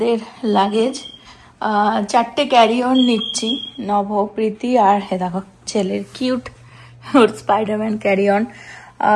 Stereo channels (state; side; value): identical; both; correlation 1.00